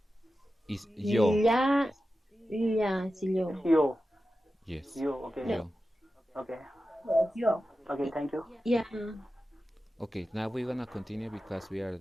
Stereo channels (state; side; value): normal; both; correlation 0.93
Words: Is yo, La, la, sí, It's yo. yo. yes, Yo, okay. No, yo. Okay. Yo. Okay, thank you. yeah. Okay, now we're gonna continue because we are